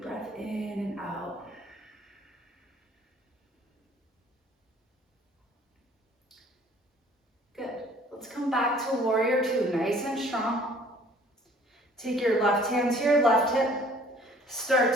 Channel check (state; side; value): normal; both; correlation 0.55